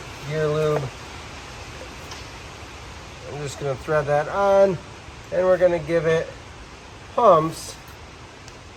gear lube. I'm just gonna thread that on, and we're gonna give it pumps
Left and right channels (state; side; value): identical; both; correlation 1.00